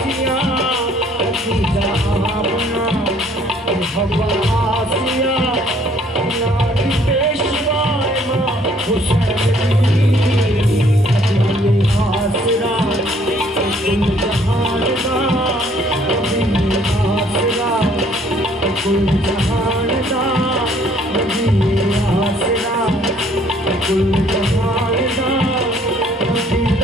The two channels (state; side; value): normal; both; correlation 0.61